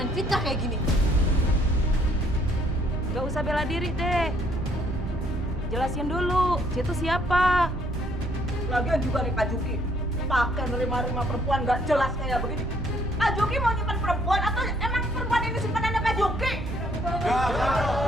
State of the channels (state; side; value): normal; both; correlation 0.65